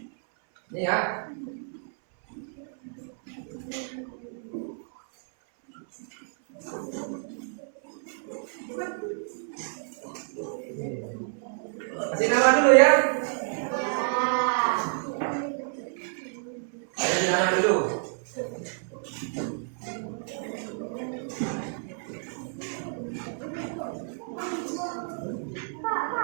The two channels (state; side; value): silent; left; 58 dB below the other